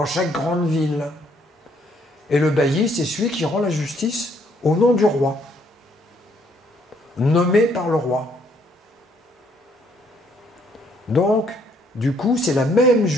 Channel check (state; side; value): normal; both; correlation 0.67